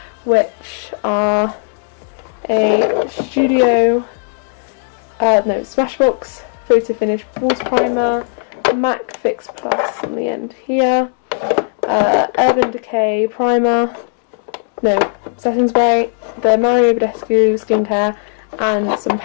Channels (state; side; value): silent; right; 69 dB below the other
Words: which are a Studio, Smashbox Photo Finish Water Primer, MAC Fix Plus on the end here, Urban Decay Primer, setting spray, the Mario Badescu skincare, and some